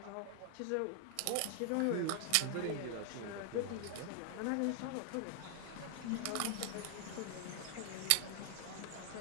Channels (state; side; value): different; both; correlation 0.00